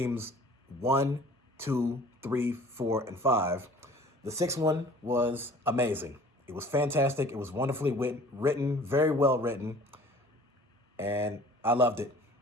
1, 2, 3, 4, and 5, the sixth one was amazing. It was fantastic. It was wonderfully written, very well written, and I loved it.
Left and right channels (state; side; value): normal; both; correlation 0.49